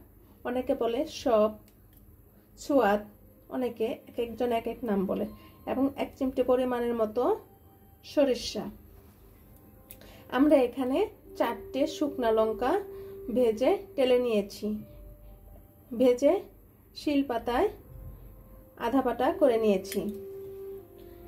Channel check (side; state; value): both; identical; correlation 1.00